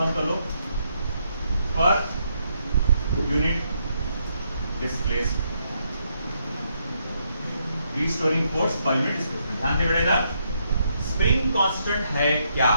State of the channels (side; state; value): both; inverted; correlation -0.77